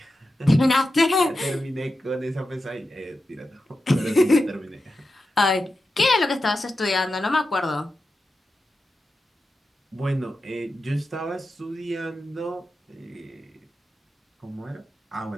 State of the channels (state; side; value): normal; both; correlation 0.91